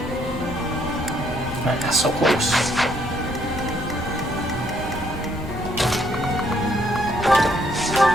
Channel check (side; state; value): both; normal; correlation 0.69